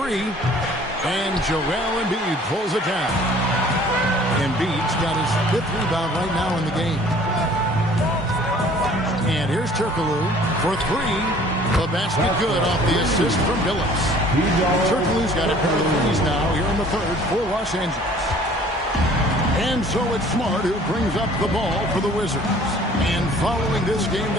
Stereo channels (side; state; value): both; normal; correlation 0.52